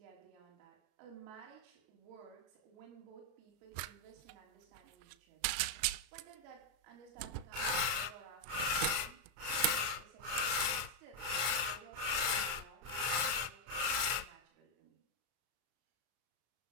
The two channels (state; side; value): late; left; 33 ms